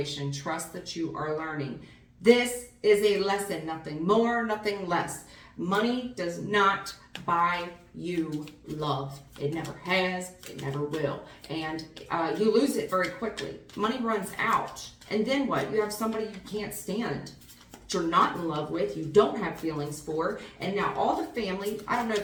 Trust that you are learning. This is a lesson, nothing more, nothing less. Money does not buy you love. It never has, it never will. And you lose it very quickly. Money runs out. And then what? You have somebody you can't stand, that you're not in love with, you don't have feelings for, and now all the family, I don't know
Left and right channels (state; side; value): identical; both; correlation 1.00